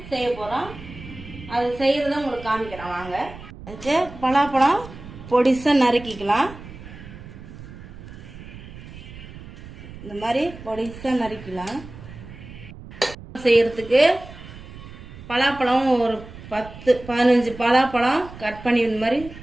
அது செய்கிறத உங்களுக்கு காமிக்கிறேன் வாங்க. அதுக்கு பலாப்பழம் பொடிசாக நறுக்கிக்கலாம். இந்த மாதிரி பொடிசாக நறுக்கலாம். செய்கிறதுக்கு பலாப்பழம் ஒரு 10-15 பலாப்பழம் கட் பண்ணி இந்த மாதிரி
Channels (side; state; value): right; noise; rumble, 15 dB below the sound